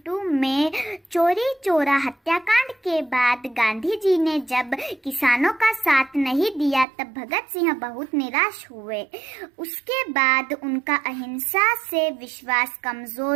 में चोरी चोरा हत्याकांड के बाद गांधी जी ने जब किसानों का साथ नहीं दिया तब भगत सिंह बहुत निराश हुए। उसके बाद उनका अहिंसा से विश्वास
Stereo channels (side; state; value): left; drops out; at 6.9 s